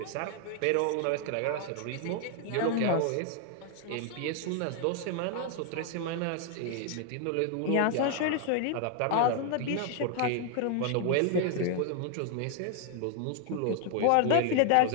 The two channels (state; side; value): different; both; correlation 0.00